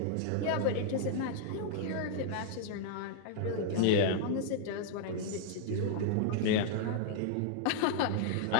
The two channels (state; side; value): different; both; correlation -0.01